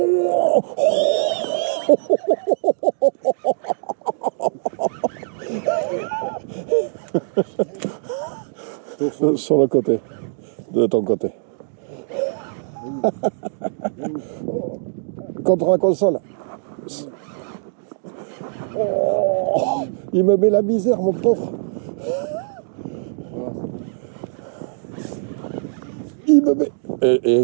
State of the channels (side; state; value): left; silent; digital silence